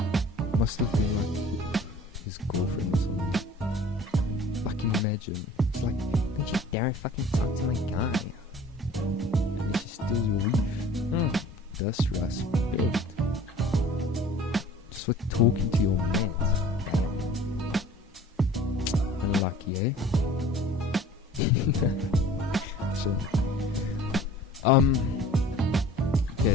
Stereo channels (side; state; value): both; normal; correlation 0.47